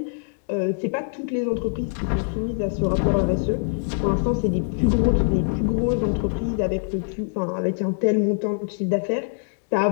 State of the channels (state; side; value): silent; right; digital silence